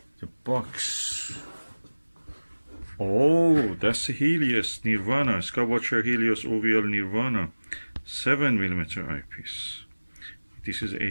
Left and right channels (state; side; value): inverted; both; correlation -1.00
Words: The box. Oh, that's the Helios Nirvana, Skywatcher Helios OVL Nirvana 7mm eyepiece. This is